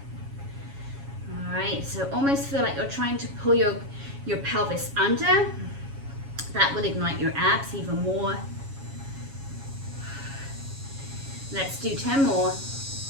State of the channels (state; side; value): late; left; 7.2 ms